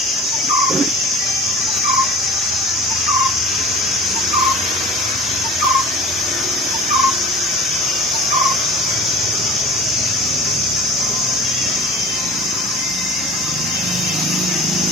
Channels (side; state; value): both; normal; correlation 0.40